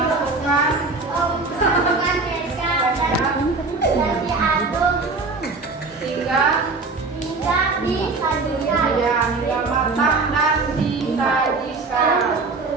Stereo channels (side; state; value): left; quieter; 3.8 dB